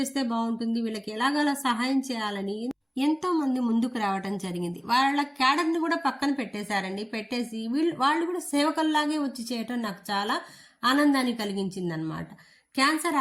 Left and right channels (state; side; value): identical; both; correlation 1.00